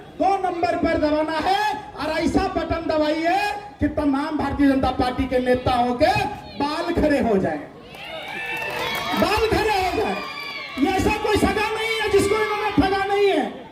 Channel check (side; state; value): both; identical; correlation 1.00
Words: 2 नंबर पर दबाना है और ऐसा बटन दबाइए कि तमाम भारतीय जनता पार्टी के नेताओं के बाल खड़े हो जाए, बाल खड़े हो जाए। ये ऐसा कोई सगा नहीं है जिसको इन्होंने ठगा नहीं है।